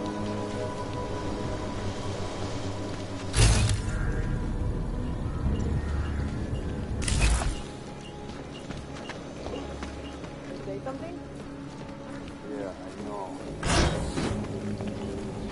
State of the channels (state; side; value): identical; both; correlation 1.00